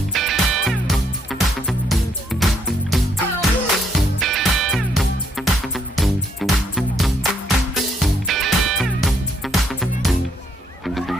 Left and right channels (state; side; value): normal; both; correlation 0.71